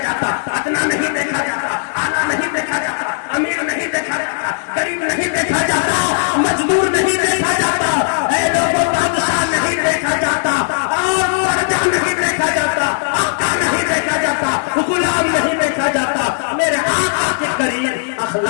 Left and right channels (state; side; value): silent; right; digital silence